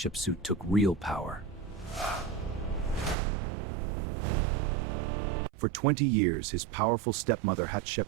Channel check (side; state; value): left; drops out; at 3.2 s